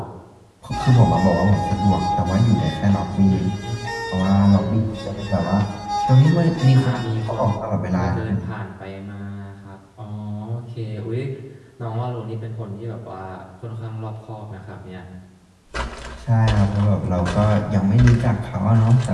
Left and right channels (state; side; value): identical; both; correlation 1.00